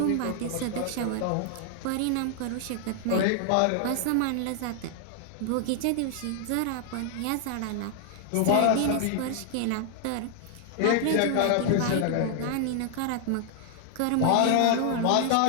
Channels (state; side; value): different; both; correlation 0.00